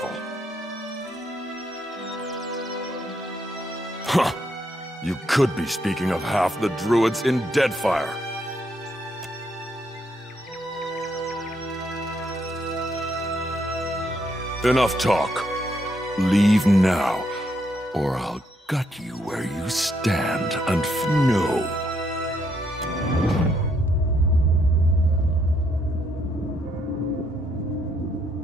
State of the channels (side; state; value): both; normal; correlation 0.74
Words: Huh. You could be speaking of half the druids in Deadfire. Enough talk. Leave now, or I'll gut you where you stand and know.